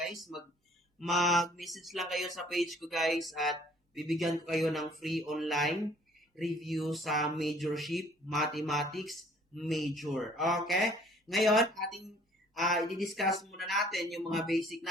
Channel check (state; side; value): normal; both; correlation 0.56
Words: mag-message lang kayo sa page ko guys at bibigyan ko kayo ng free online review sa Majorship Mathematics Major. Okay? Ngayon, ating i-discuss muna natin yung mga basic